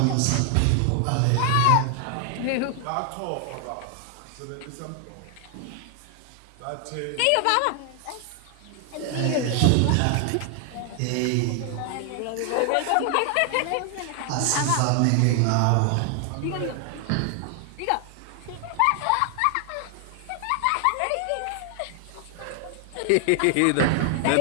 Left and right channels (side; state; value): both; different; correlation 0.00